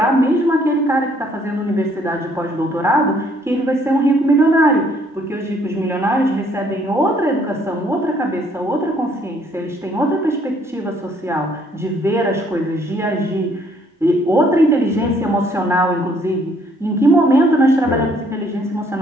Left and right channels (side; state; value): both; normal; correlation 0.64